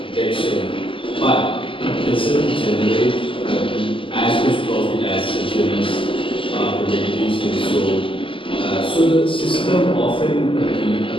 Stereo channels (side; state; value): right; late; 0.25 ms